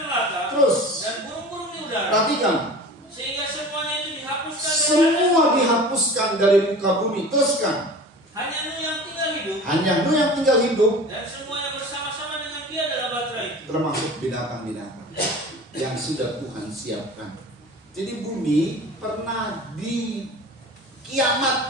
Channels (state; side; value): normal; both; correlation 0.39